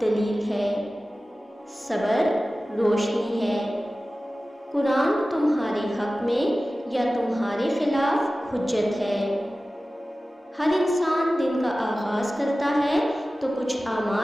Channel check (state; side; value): normal; both; correlation 0.96